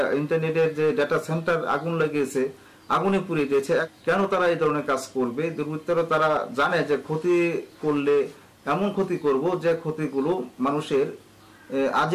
ইন্টারনেটের যে ডাটা সেন্টার আগুন লাগিয়েছে, আগুনে পুড়িয়ে দিয়েছে। কেন তারা এই ধরনের কাজ করবে? দুর্বৃত্তরা তারা জানে যে ক্ষতি করলে এমন ক্ষতি করব যে ক্ষতিগুলো মানুষের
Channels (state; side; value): identical; both; correlation 1.00